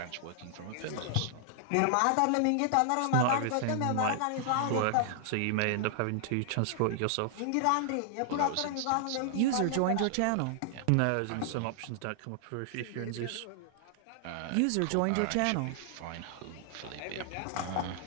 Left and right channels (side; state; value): both; different; correlation 0.00